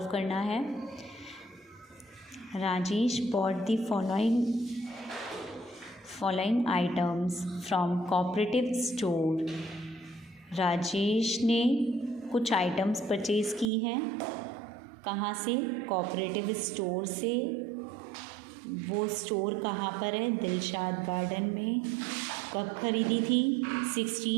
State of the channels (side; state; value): left; drops out; at 13.7 s